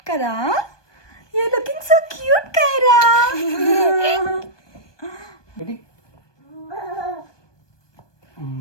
కదా. You looking so cute Kaira.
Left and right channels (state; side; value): late; right; 1.2 ms